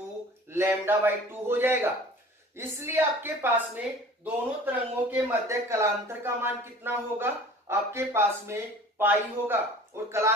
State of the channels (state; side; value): normal; both; correlation 0.45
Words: 2 हो जाएगा। इसलिए आपके पास में दोनों तरंगों के मध्य कलांतर का मान कितना होगा, आपके पास में पाई होगा, और